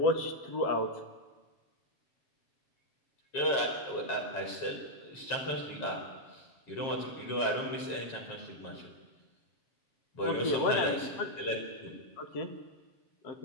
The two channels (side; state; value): right; late; 7.3 ms